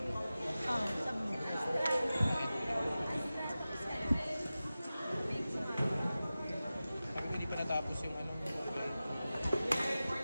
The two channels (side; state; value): both; inverted; correlation -0.95